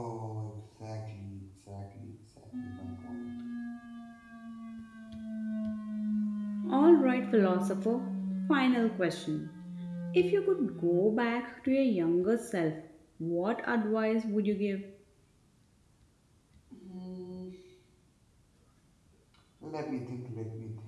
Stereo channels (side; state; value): both; identical; correlation 1.00